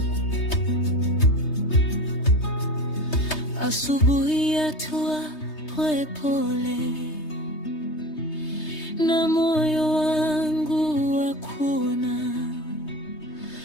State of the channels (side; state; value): right; late; 3.2 ms